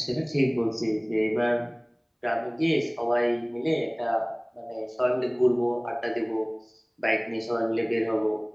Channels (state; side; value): identical; both; correlation 1.00